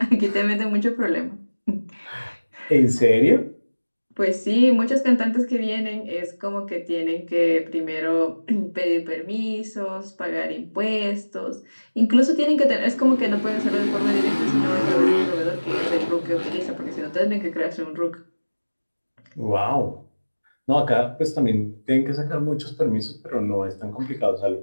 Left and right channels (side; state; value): both; inverted; correlation -1.00